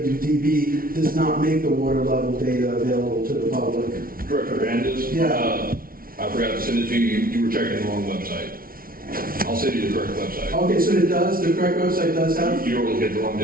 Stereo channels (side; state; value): left; late; 0.43 ms